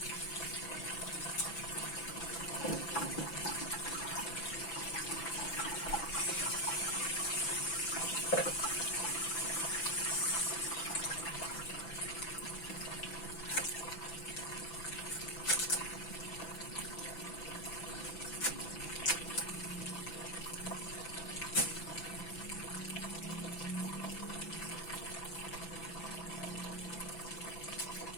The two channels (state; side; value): late; right; 6.0 ms